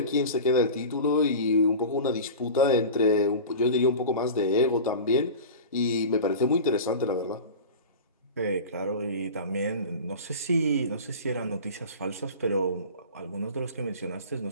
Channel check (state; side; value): inverted; both; correlation -0.33